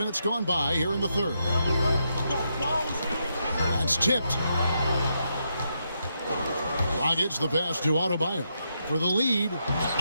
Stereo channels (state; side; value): inverted; both; correlation -0.81